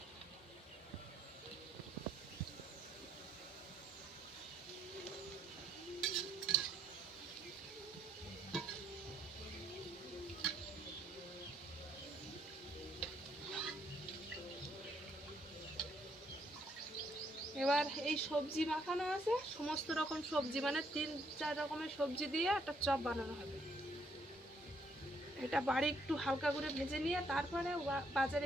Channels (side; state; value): both; normal; correlation 0.71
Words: এবার এই সবজি মাখানো আছে, সমস্ত রকম সবজি, মানে 3-4 রকমের সবজি দিয়ে একটা চপ বানানো হবে। এটা বাড়ি একটু হালকা করে ভেজে নিয়ে তারপরে